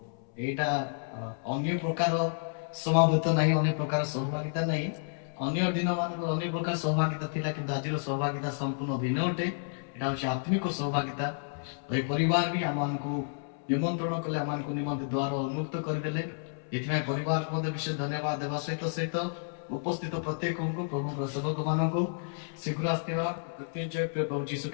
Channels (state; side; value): silent; right; 57 dB below the other